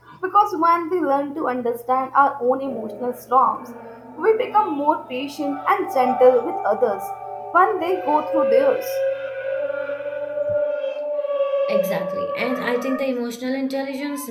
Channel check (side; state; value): both; identical; correlation 1.00